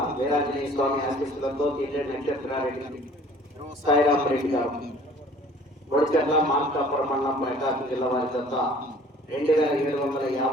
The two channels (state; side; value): normal; both; correlation 0.51